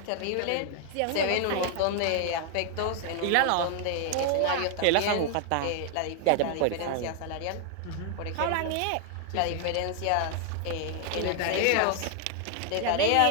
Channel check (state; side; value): different; both; correlation 0.00